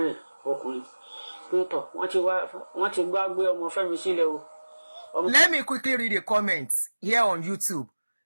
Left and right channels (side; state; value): both; inverted; correlation -1.00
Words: ẹ̀ ọkùnrin pé tọ̀ wọ́n ti gbá gbé ọmọ Fẹ́mi sílẹ̀ o. Let me quickly read a comment here on YouTube.